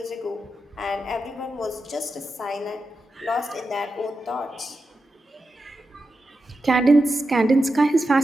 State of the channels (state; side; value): normal; both; correlation 0.89